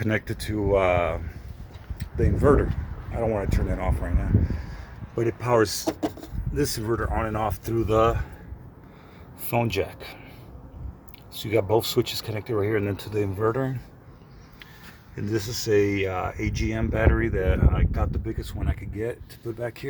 to the inverter. I don't want to turn that off right now, but it powers this inverter on and off through the phone jack. So you got both switches connected right here and then to the inverter. And this is a AGM battery that I got, the biggest one I could get to put back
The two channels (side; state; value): both; identical; correlation 1.00